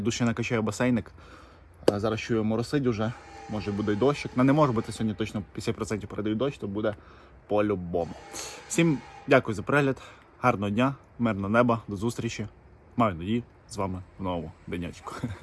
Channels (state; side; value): identical; both; correlation 1.00